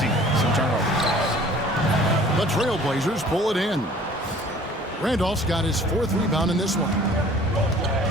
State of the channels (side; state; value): both; normal; correlation 0.51